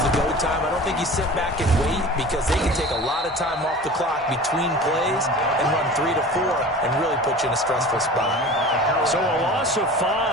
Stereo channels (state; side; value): normal; both; correlation 0.38